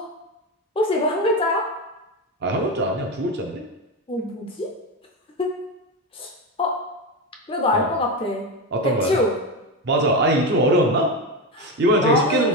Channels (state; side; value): normal; both; correlation 0.15